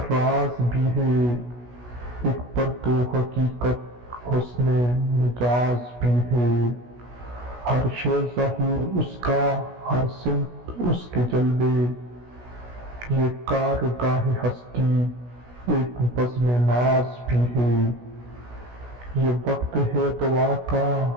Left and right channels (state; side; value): late; left; 16 ms